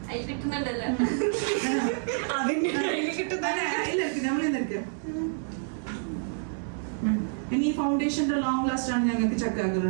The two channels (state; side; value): silent; left; digital silence